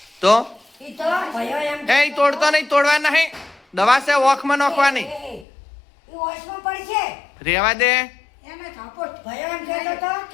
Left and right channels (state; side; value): drops out; right; at 5.5 s